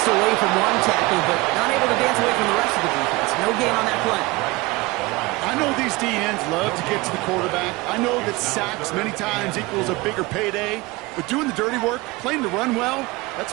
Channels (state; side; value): quieter; left; 22.6 dB